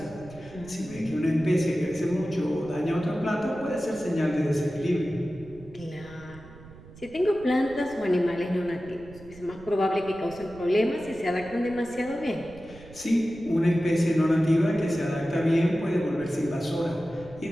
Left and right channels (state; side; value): noise; right; rumble, 19 dB below the sound